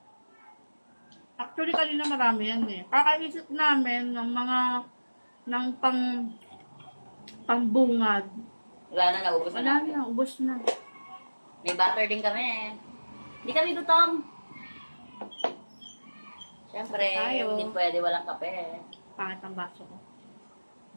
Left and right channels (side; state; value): both; inverted; correlation -1.00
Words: Actually, kanina marami yan eh. Kakaisip namin ng mga pangbungad. Wala na, naubos na Wala namin. na, ubos na. May butter din kami. Hindi kami gutom. Siyempre, Tayo. hindi pwede walang kape. Pangit ang baso ko.